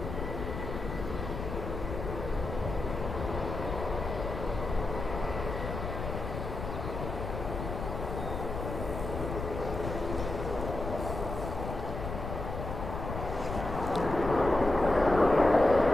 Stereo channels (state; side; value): noise; left; rumble, 6 dB below the sound